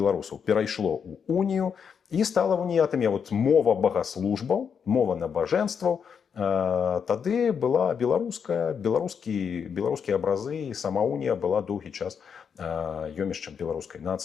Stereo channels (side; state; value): right; quieter; 6.9 dB